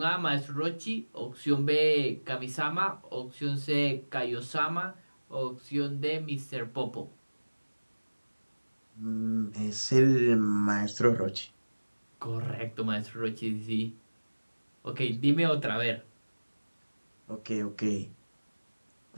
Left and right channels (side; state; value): both; inverted; correlation -1.00